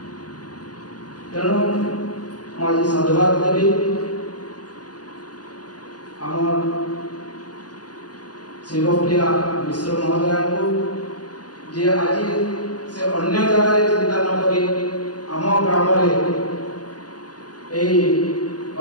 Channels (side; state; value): right; late; 0.69 ms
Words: तेणु मुझे साधुवाद देवी आम शिवप्रिया मिश्र महोदय को जे आज से अन्य जगह चिंता न करी आम ग्राम